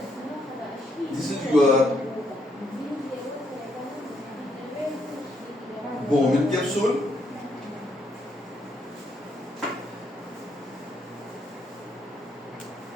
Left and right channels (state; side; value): normal; both; correlation 0.74